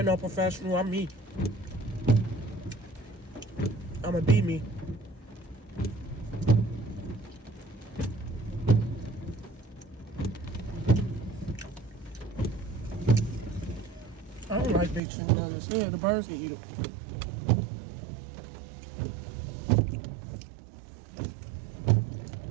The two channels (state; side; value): drops out; left; at 15.0 s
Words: no professional, I'm me. I'ma be me. I don't like big chicken nuggets. Yeah, the birds can eat them.